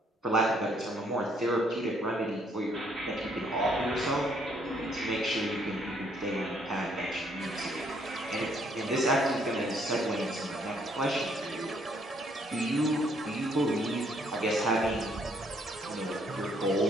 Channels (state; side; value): normal; both; correlation 0.67